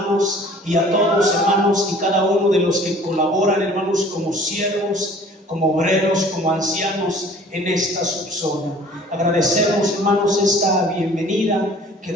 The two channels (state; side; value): normal; both; correlation 0.50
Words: y a todos, hermanos, y cada uno de los que colaboran, hermanos, como siervos, como obreros, como ancianos en esta subzona. Agradecemos, hermanos, esta bienvenida que